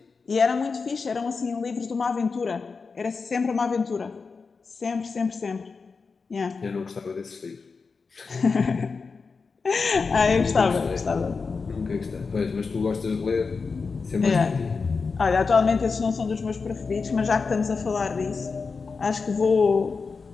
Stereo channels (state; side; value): quieter; right; 4.8 dB